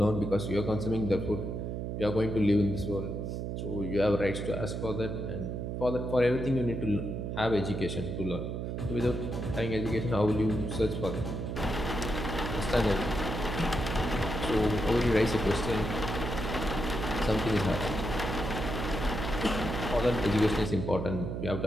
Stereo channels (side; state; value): right; noise; hum, 4 dB below the sound